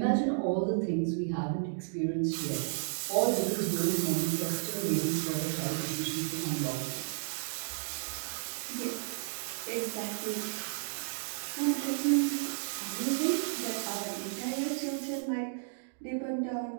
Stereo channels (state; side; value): silent; left; digital silence